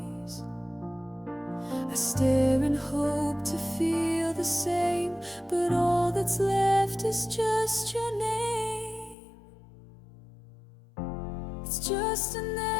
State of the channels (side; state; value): right; drops out; at 9.2 s